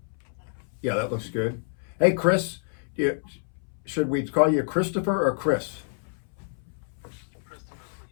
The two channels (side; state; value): right; silent; 59 dB below the other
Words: Yeah, that looks good. Hey, Chris, should we call you Christopher or Chris? Christopher,